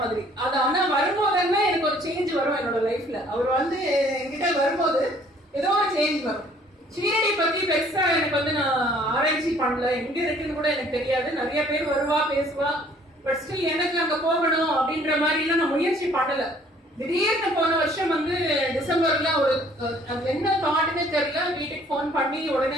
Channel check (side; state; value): both; normal; correlation 0.58